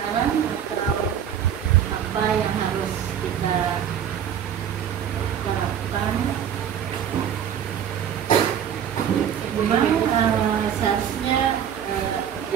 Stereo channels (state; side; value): quieter; left; 9.0 dB